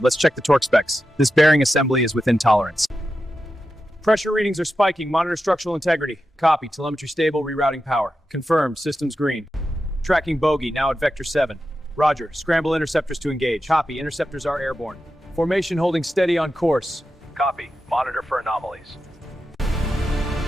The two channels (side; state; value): both; normal; correlation 0.90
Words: Let's check the torque specs. This bearing assembly is within tolerance. Pressure readings are spiking. Monitor structural integrity. Copy. Telemetry stable. Rerouting power. Confirmed. Systems green. Tracking bogey. Now at vector 7. Roger. Scramble interceptors to engage. Copy. Interceptors are airborne. Formation holding steady on course. Copy. Monitor for anomalies.